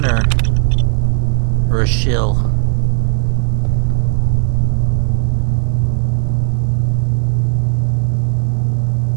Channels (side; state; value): left; silent; digital silence